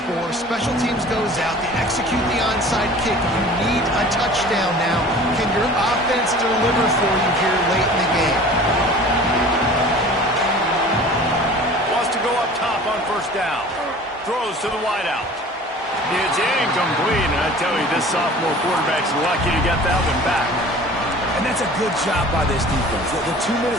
Special teams goes out. They execute the onside kick. You need a touchdown now. Can your offense deliver for you here late in the game? Wants to go up top on 1st down. Throws to the wideout. It's incomplete, and I tell you, this sophomore quarterback's lucky to get that one back. And that's a good job by this defense. The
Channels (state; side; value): normal; both; correlation 0.44